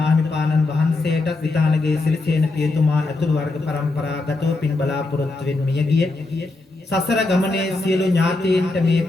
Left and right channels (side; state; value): right; quieter; 3.2 dB